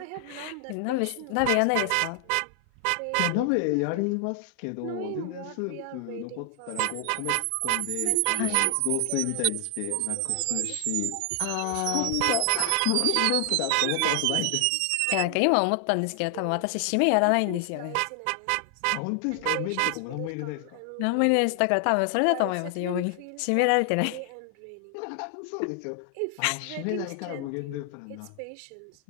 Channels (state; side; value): different; both; correlation 0.00